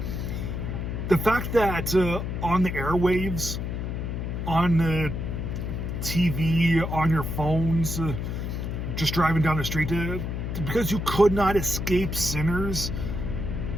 the fact that on the airwaves, on the TV, on your phones, just driving down the street, because you could not escape Sinners,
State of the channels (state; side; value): noise; left; hum, 3 dB below the sound